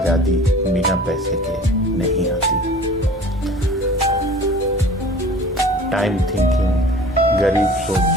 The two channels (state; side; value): normal; both; correlation 0.44